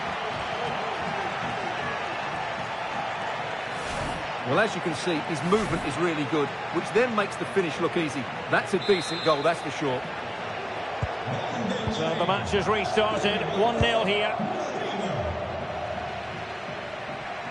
Well, as you can see, his movement is really good, which then makes the finish look easy. That's a decent goal, that's for sure. So the match has restarted, 1-0 here.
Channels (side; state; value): both; identical; correlation 1.00